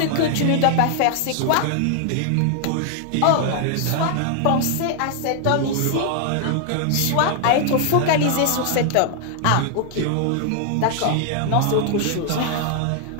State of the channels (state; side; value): different; both; correlation 0.00